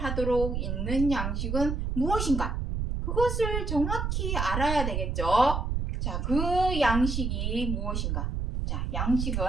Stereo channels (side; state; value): right; noise; rumble, 1 dB below the sound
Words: 하도록 있는 양식은 무엇인가? 그것을 정확히 알아야 되겠죠. 자, 그 양식이 무엇인가? 자,